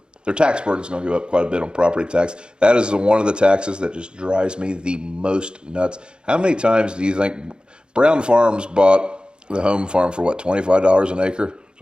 their tax burden is going to go up quite a bit on property tax. That is one of the taxes that just drives me the most nuts. How many times do you think Brown Farms bought the home farm for what, $25 an acre?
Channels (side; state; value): left; late; 0.051 ms